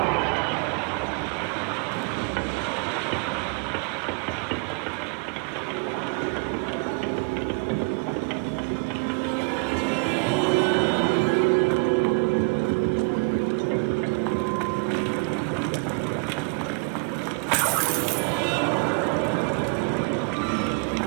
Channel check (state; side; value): quieter; left; 34.9 dB